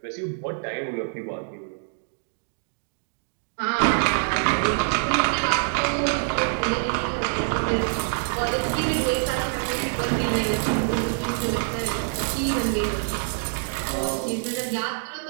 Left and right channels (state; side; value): silent; left; digital silence